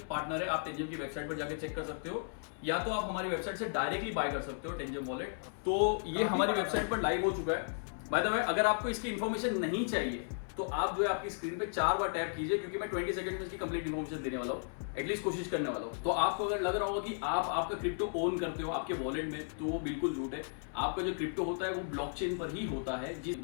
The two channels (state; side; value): silent; right; 54 dB below the other